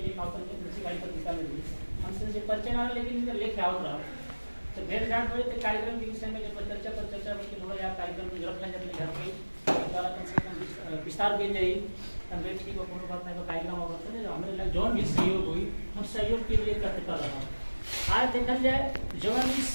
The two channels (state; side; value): inverted; both; correlation -1.00